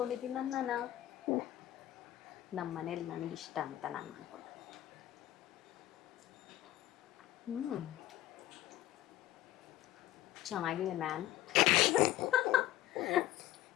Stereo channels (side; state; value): right; quieter; 14.5 dB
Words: ನಮ್ಮ ಮನೇಲಿ ನನಗಿಷ್ಟ ಅಂತ ನಾನು ಮಾಡ್ಕೊಂಡೆ. ಚೆನ್ನಾಗಿದೆ ಮ್ಯಾನ್.